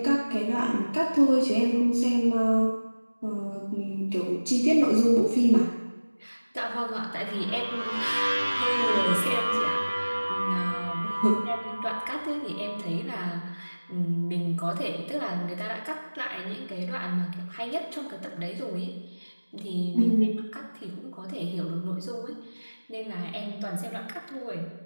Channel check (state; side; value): inverted; both; correlation -1.00